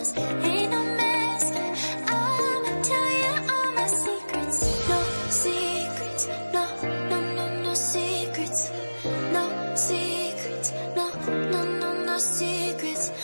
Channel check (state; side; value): inverted; both; correlation -1.00